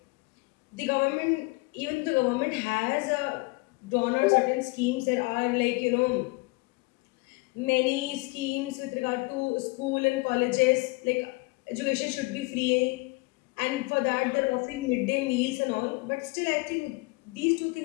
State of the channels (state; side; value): quieter; right; 25.8 dB